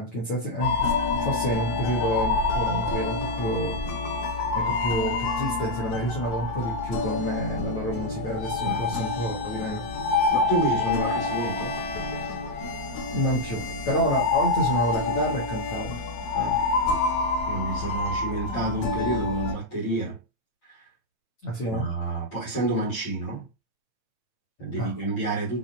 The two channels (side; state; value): right; late; 9.0 ms